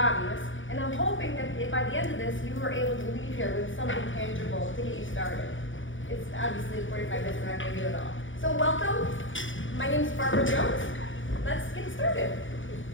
and I'm hoping that by the end of this you were able to leave here with something tangible to get you started. It's obviously 45 minutes, we're not going to do it all. So welcome, my name is Barbara Jones. Let's get started.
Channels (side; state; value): right; late; 0.56 ms